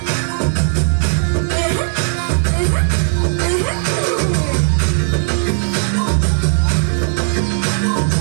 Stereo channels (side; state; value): left; silent; 62 dB below the other